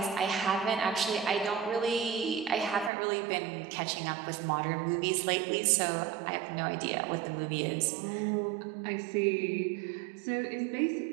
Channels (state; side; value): drops out; left; at 2.9 s